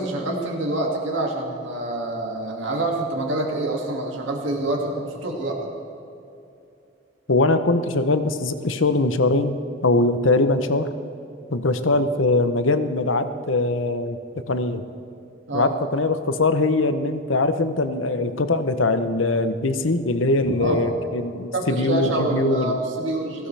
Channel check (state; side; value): normal; both; correlation 0.06